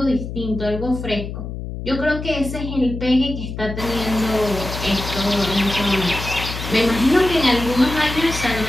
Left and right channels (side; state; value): left; noise; hum, 7 dB below the sound